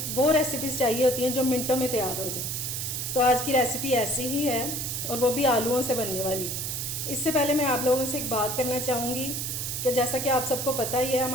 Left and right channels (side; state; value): right; noise; hiss, 3 dB below the sound